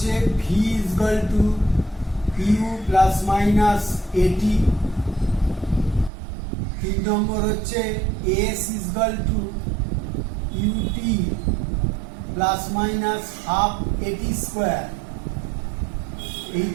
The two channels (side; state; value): left; drops out; at 6.1 s